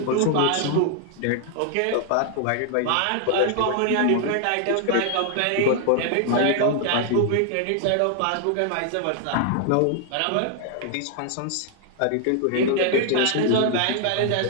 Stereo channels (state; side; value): different; both; correlation 0.00